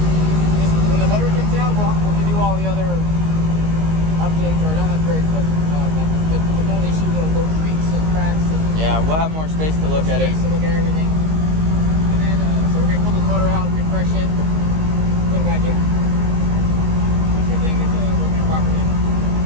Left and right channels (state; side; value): late; left; 19 ms